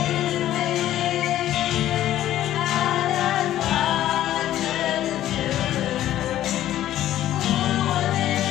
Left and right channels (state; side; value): quieter; right; 12.9 dB